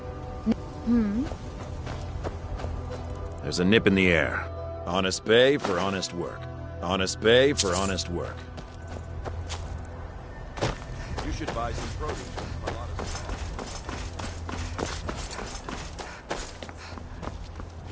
There's a nip in the air. Honest pay for honest work. Honest pay for honest work. You should buy some produce from Carlotta's.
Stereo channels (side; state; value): both; identical; correlation 1.00